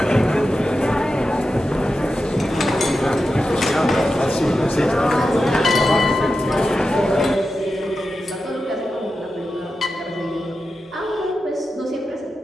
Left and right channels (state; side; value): normal; both; correlation 0.91